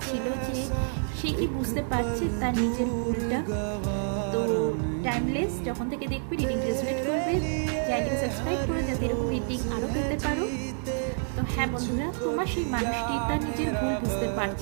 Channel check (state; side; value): silent; left; digital silence